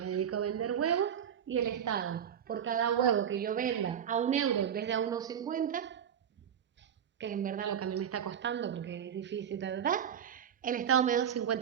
dedico a vender huevos y el Estado, por cada huevo que yo venda a 1 euro en vez de a 1,50, que en verdad lo que a mí me está costando porque es difícil, el Estado me da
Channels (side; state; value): left; quieter; 8.7 dB